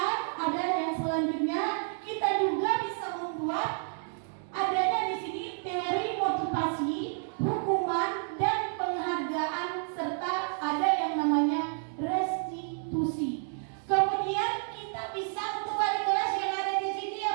ada yang selanjutnya, kita juga bisa membuat adanya di sini teori motivasi, hukuman dan penghargaan serta ada yang namanya restitusi. Kemudian kita bisa untuk wali kelas yang ada di sini ya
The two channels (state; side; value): silent; left; 58 dB below the other